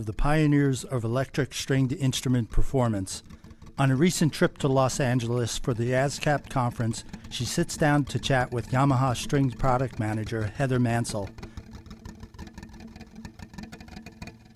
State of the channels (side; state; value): both; identical; correlation 1.00